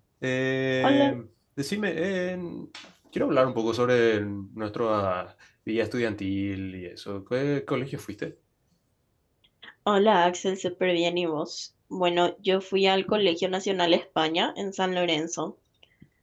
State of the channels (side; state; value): both; identical; correlation 1.00